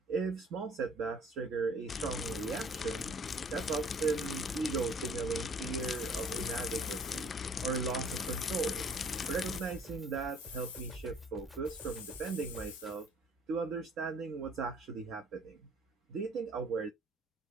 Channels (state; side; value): normal; both; correlation 0.54